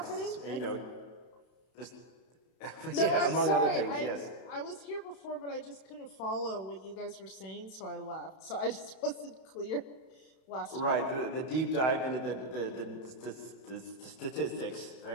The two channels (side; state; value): right; late; 31 ms